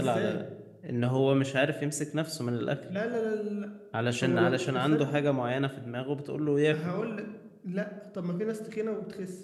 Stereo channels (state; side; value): identical; both; correlation 1.00